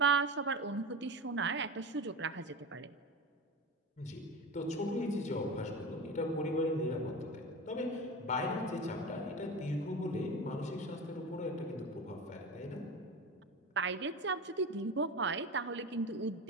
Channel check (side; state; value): both; normal; correlation 0.27